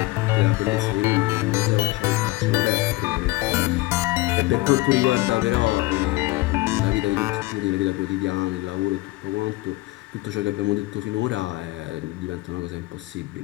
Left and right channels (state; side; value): quieter; right; 20.4 dB